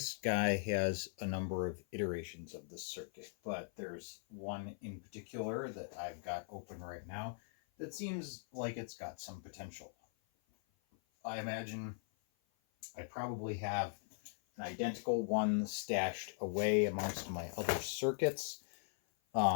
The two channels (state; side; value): silent; right; 51 dB below the other